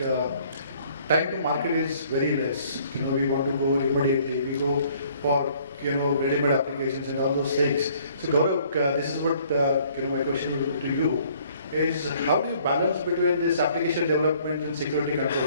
time to market is very less. We want to go immediately. We go for ready-made applications and all those things. So Gaurav, this is what my question would be to you. Is how do you balance between this application development and security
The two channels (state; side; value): inverted; both; correlation -0.60